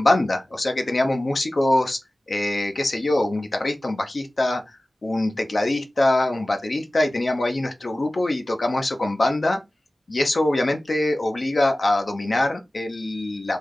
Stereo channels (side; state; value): both; normal; correlation 0.97